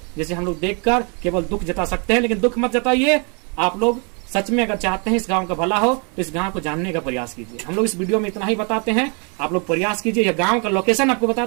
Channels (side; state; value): left; quieter; 36.0 dB